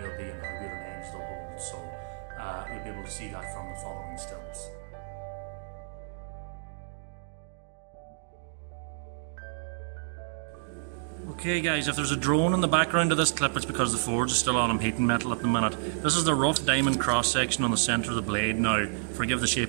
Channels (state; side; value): silent; left; digital silence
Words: they'll be and how good an edge they'll hold. So you'll be able to see that from the following stills. Okay guys, if there's a drone in the background of this clip, it's because the forge is still on. I'm heating metal at the minute. This is the rough diamond cross section on the centre of the blade. Now, forgive the